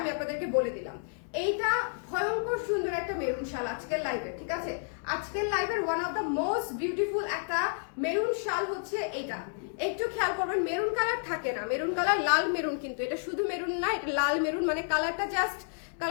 আমি আপনাদেরকে বলে দিলাম। এইটা ভয়ঙ্কর সুন্দর একটা মেরুন শাল আজকের লাইভে, ঠিক আছে? আজকের লাইভের one of the most beautiful একটা মেরুন শাল হচ্ছে এইটা। একটু খেয়াল করবেন, মেরুন কালার থাকে না, মেরুন কালার লাল মেরুন, কিন্তু এটা শুধু মেরুন না, এটা লাল মেরুন, মানে কালারটা জাস্ট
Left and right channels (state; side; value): silent; right; digital silence